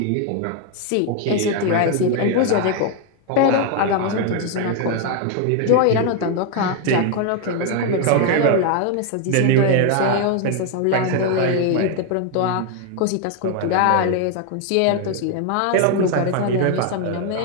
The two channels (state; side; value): different; both; correlation 0.01